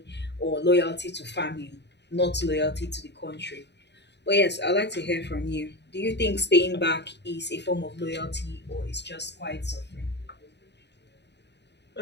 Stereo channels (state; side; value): late; right; 0.50 ms